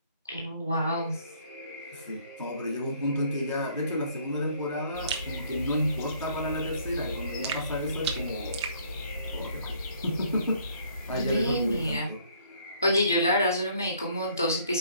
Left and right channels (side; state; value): both; inverted; correlation -0.62